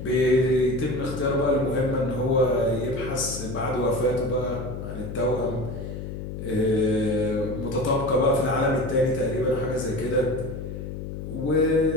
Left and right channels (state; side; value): noise; left; hum, 7 dB below the sound